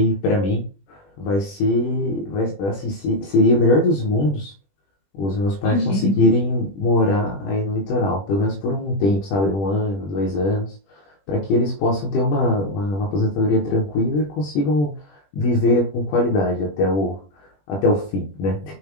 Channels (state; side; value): late; right; 20 ms